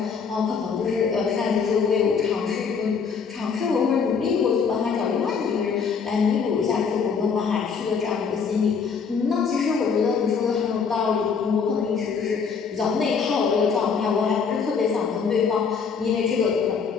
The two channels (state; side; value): quieter; right; 5.9 dB